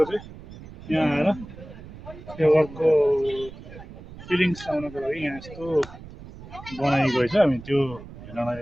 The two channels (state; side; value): noise; right; rumble, 16 dB below the sound